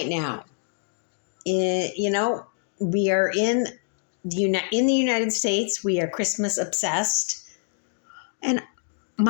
now? We are in the United States. We are Christmas obsessed, and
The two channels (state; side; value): silent; right; digital silence